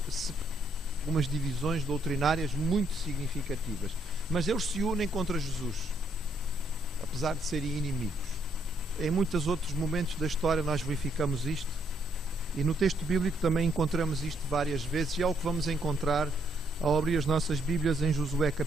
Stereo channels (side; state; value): both; normal; correlation 0.72